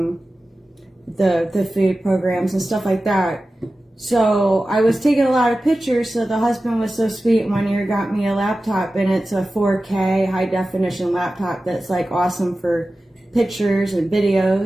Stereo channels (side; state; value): both; normal; correlation 0.95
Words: the food programs and stuff like that. So I was taking a lot of pictures, so the husband was so sweet, one year got me a laptop, and it's a 4K high definition laptop that's like awesome for pictures and